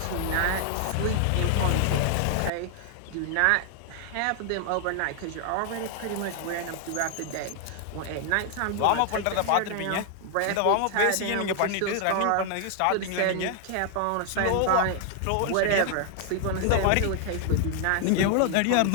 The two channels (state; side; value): different; both; correlation 0.00